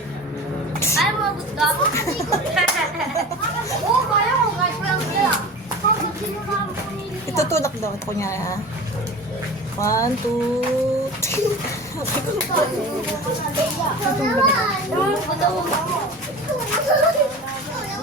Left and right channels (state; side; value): normal; both; correlation 0.34